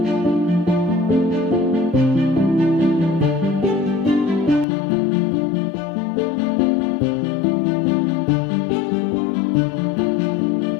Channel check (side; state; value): right; drops out; at 4.7 s